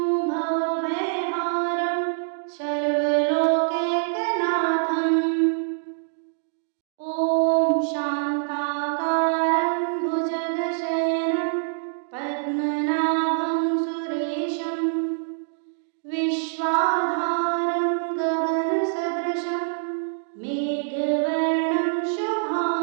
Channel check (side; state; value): left; silent; digital silence